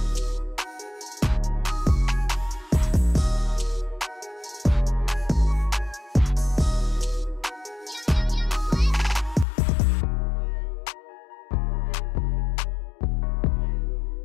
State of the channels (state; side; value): drops out; right; at 9.5 s